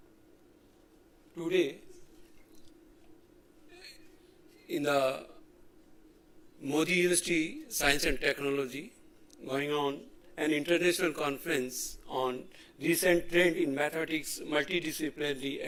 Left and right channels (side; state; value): both; identical; correlation 1.00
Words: Today, in the Modi University Science and Technology, going on an international conference on recent trend in mathematics,